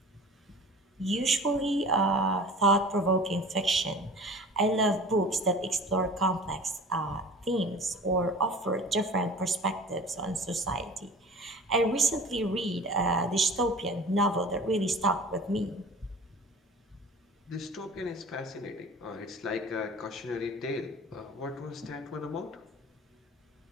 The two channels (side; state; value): both; normal; correlation 0.42